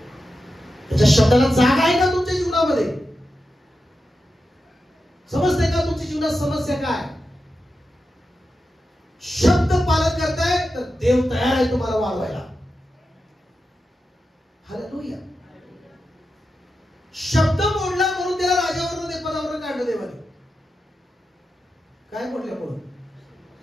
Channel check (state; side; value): normal; both; correlation 0.90